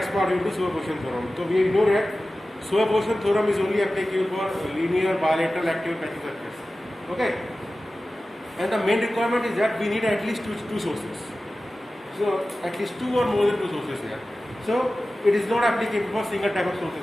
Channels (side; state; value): both; normal; correlation 0.95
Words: part we will do superposition theorem. So we know that superposition theorem is only applicable for linear, bilateral, active, passive circuits. Okay. And the main requirement is that we need at least two sources. So at least two or more than two sources here. So it is not applicable for single type of sources